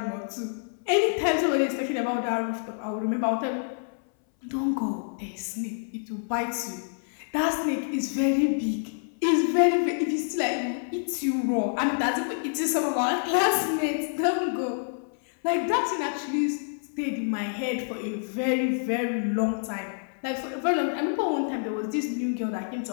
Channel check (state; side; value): silent; right; 60 dB below the other